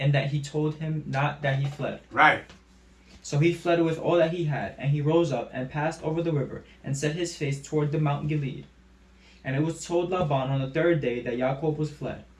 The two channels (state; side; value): identical; both; correlation 1.00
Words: that he told him not that he fled. Right. So he fled with all that he had, and he rose up and passed over the river, and set his face toward the Mount Gilead. And it was told Laban on the third day that Jacob was fled.